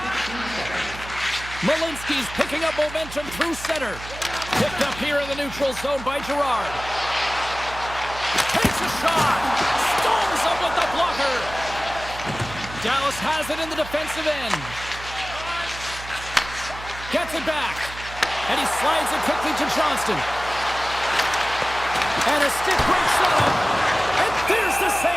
Malinsky's picking up momentum through center. Picked up here in the neutral zone by Girard. Takes a shot. Storms up with the blocker. Dallas has it in the defensive end. Gets it back. And he slides it quickly to Johnston. And a stick break setup. And there's the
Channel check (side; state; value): right; noise; hum, 13 dB below the sound